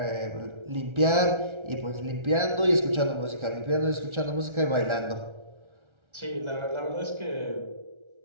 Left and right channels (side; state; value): left; late; 1.3 ms